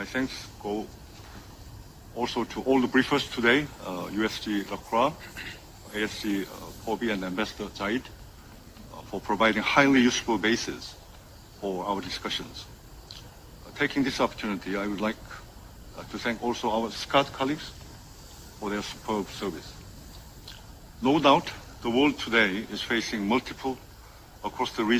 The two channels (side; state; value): both; identical; correlation 1.00